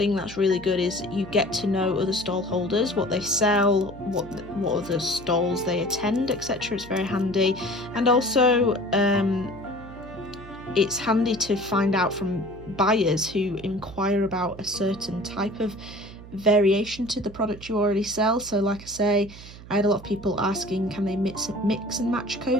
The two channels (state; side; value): noise; right; hum, 16 dB below the sound